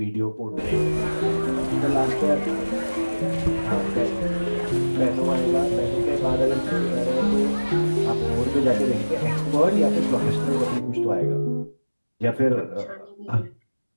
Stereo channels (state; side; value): inverted; both; correlation -1.00